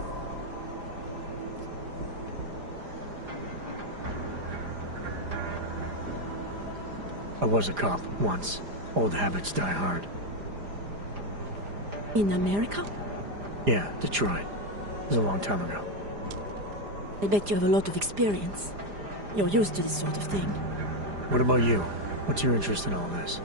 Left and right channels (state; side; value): late; left; 4.9 ms